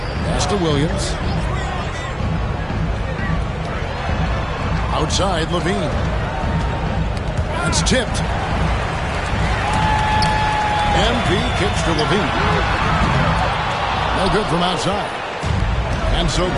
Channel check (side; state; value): both; identical; correlation 1.00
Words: Pass to Williams. Outside, LaVine. That's tipped. MP kicks to LaVine. No good from outside. And so